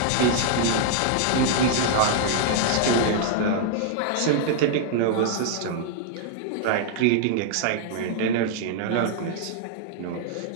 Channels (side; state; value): both; different; correlation -0.01